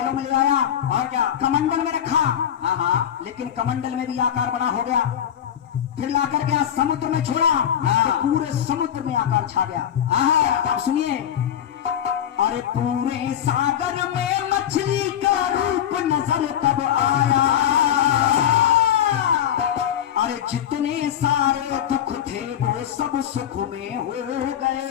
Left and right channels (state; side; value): quieter; right; 9.8 dB